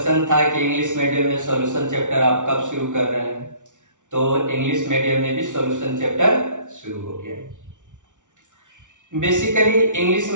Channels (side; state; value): left; late; 0.86 ms